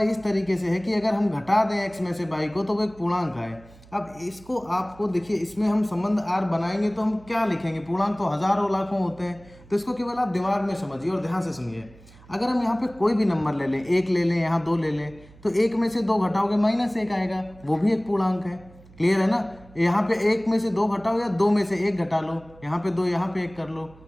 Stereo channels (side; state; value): right; noise; hum, 23 dB below the sound